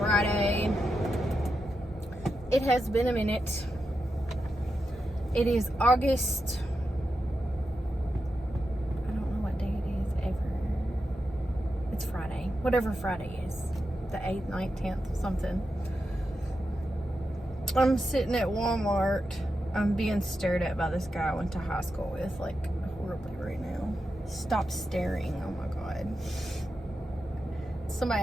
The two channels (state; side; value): normal; both; correlation 0.88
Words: It has been a minute. It is August. I don't know what day it is ever. It's Friday. Whatever Friday is. The 8th, 9th, 10th, something. I'm sitting at Walmart. I'm being stared at by this guy I went to high school with, like, horribly right now. Stop staring. Oh my God. Somebody